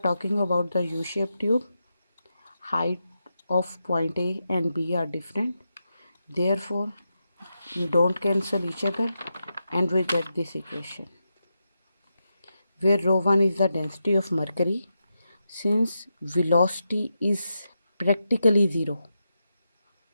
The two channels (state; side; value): inverted; both; correlation -0.87